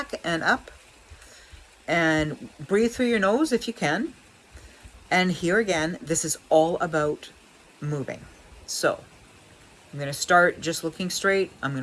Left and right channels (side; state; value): both; identical; correlation 1.00